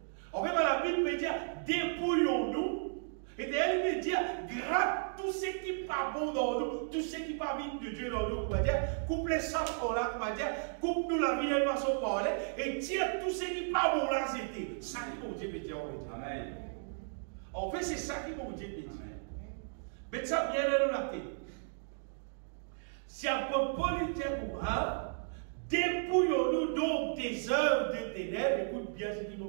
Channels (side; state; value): left; silent; digital silence